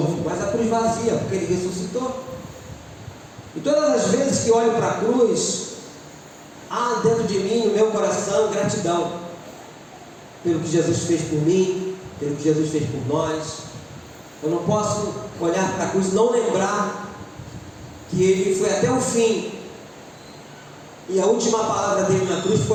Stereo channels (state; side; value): identical; both; correlation 1.00